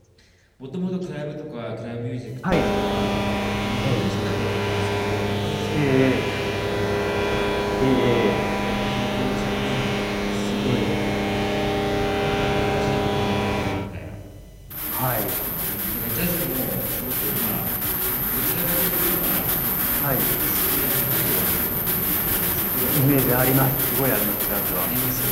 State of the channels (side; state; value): both; identical; correlation 1.00